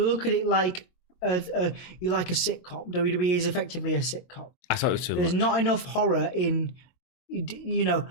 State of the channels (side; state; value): right; late; 22 ms